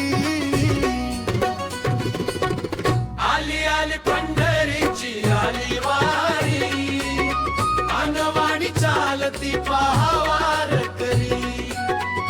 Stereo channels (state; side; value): identical; both; correlation 1.00